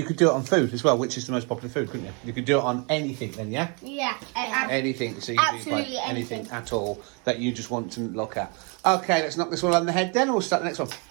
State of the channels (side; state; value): left; quieter; 34.0 dB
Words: could do it on food as well, which is the most popular food, couldn't you? You could do it on anything then, yeah? Yeah. Anything. So you can do Absolutely like anything anything. at all that you just want to look at. Okay, let's knock this one on the head then, and we'll start the next one.